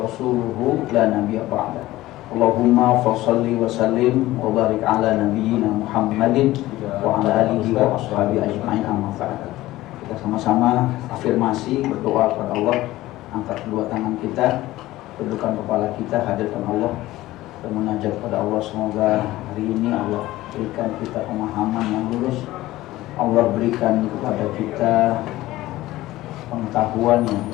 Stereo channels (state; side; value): quieter; right; 16.8 dB